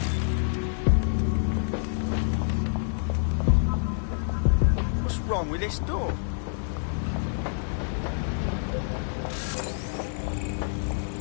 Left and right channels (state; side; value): silent; right; 60 dB below the other